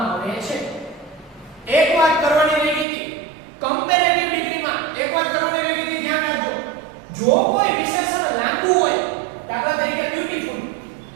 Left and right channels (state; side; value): drops out; left; at 2.9 s